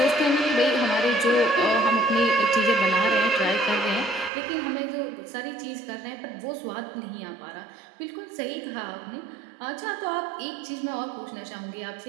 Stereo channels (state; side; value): drops out; left; at 4.3 s